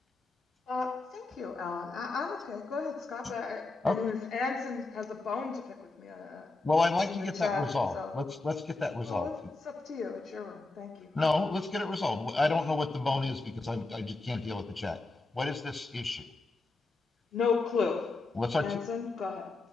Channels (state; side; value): quieter; right; 3.3 dB